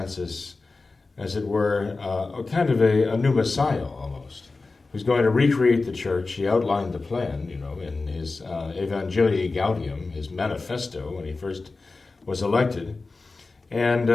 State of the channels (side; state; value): right; quieter; 3.7 dB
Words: as it were, kind of a new Messiah almost, who's going to recreate the church. He outlined the plan, in his Evangelii Gaudium, his manifesto, when he first was elected. And